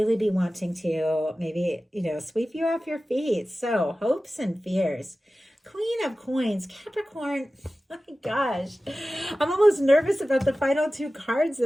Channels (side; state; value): both; normal; correlation 0.95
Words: be wanting to maybe, sweep you off your feet. So hopes and fears. Queen of Coins, Capricorn. Oh my gosh. I'm almost nervous about the final two cards